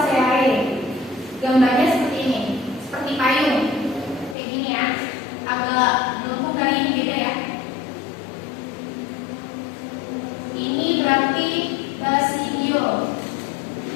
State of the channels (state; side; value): drops out; right; at 4.4 s